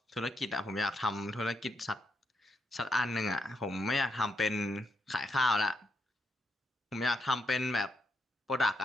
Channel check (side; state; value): both; normal; correlation 0.79